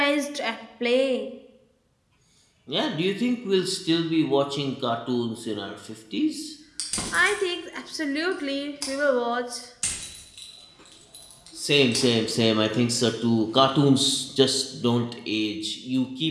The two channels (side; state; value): both; identical; correlation 1.00